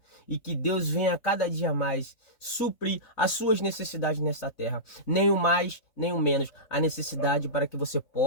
E que Deus venha cada dia mais suprir as suas necessidades nessa terra. Nem o mais, nem o menos. A necessidade para que você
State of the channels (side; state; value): right; late; 4.0 ms